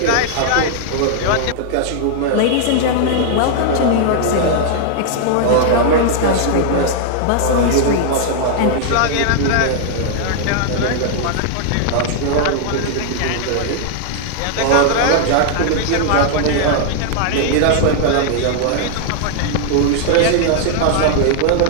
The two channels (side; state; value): both; different; correlation 0.00